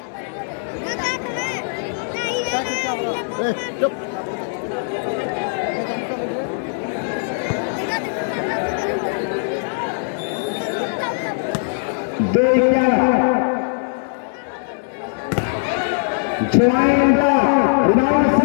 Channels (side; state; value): right; silent; digital silence